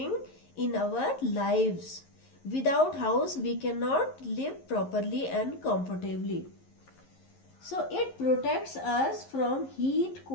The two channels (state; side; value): late; right; 11 ms